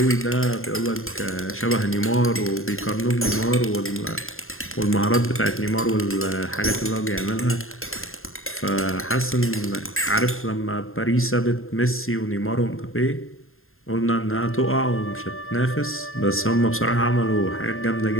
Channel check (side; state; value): right; late; 0.61 ms